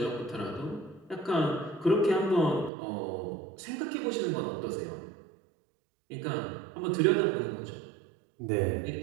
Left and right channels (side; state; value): left; drops out; at 2.7 s